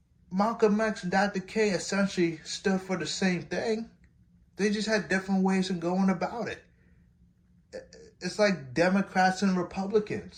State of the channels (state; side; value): identical; both; correlation 1.00